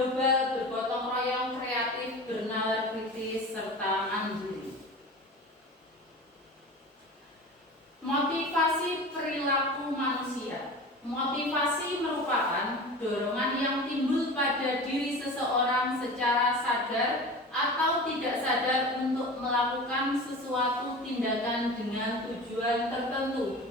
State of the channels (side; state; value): both; normal; correlation 0.34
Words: bergotong royong, kreatif, bernalar kritis, serta mandiri. Motivasi perilaku manusia. Motivasi merupakan dorongan yang timbul pada diri seseorang secara sadar atau tidak sadar untuk melakukan sesuatu tindakan dengan tujuan